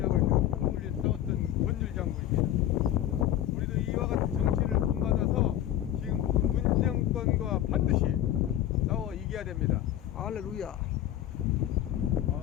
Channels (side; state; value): right; quieter; 12.2 dB